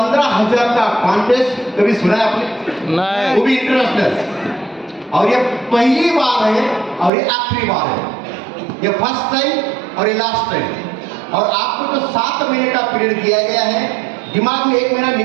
का कॉन्टेस्ट कभी सुना है आपने? नहीं वो भी इंटरनेशनल, और ये पहली बार है और ये आखिरी बार है। ये फर्स्ट टाइम और ये लास्ट टाइम। और आपको जो 7 महीने का पीरियड दिया गया है, दिमाग में 1 महीना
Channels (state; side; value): drops out; left; at 7.1 s